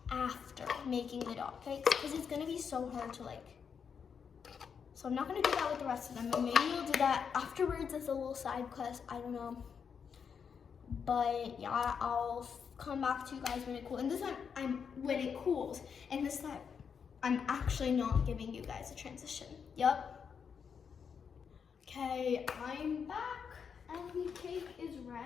after making the dot cakes because it's gonna be so hard to like. So I'm not gonna do that with the rest of them, but maybe we'll do that afterwards as a little side quest. I don't know. But yeah, I'll come back to you guys when it cools. And this time, when it cools. And this time, I'm actually not giving you guys a transition. Yup. Okay, I'm back. And the cake is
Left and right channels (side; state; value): right; quieter; 6.7 dB